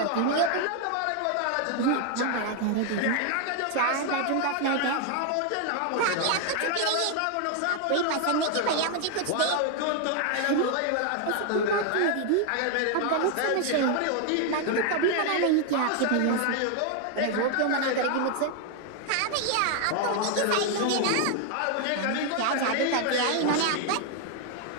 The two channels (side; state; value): both; different; correlation 0.00